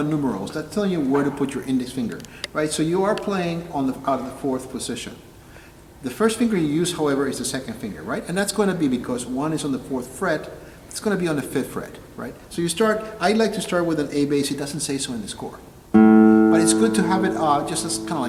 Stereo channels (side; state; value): both; identical; correlation 1.00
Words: numerals. That's telling you where to put your index finger, right? So you are playing on out of the 4th position. The first finger you use, however, is the 2nd finger, right? And that's going to be because 1 is on the 4th fret, it's going to be on the 5th fret, right? So you start, I like to start with an A bass. It doesn't say so in the score. But it's good to have it just as kind of